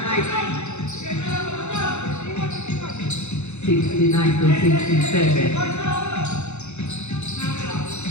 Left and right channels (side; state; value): right; late; 0.82 ms